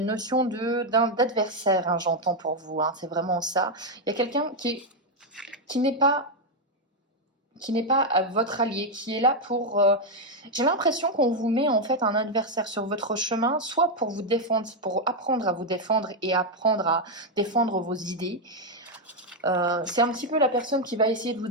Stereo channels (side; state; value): both; normal; correlation 0.02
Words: d'adversaire, hein, j'entends pour vous, hein, c'est vraiment ça. Il y a quelqu'un qui n'est pas votre allié, qui est là pour... j'ai l'impression qu'on vous met en fait un adversaire sur votre chemin, soit pour vous défendre, pour apprendre à vous défendre et apprendre à défendre vos idées. C'est un petit peu la personne qui va essayer de vous